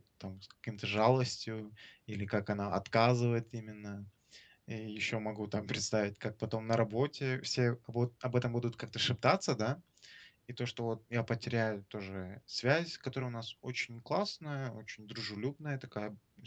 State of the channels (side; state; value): both; identical; correlation 1.00